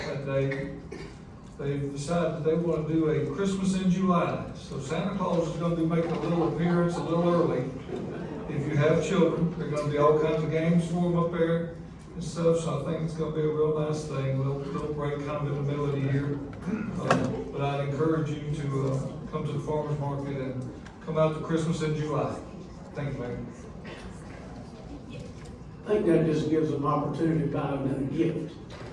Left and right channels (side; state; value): both; identical; correlation 1.00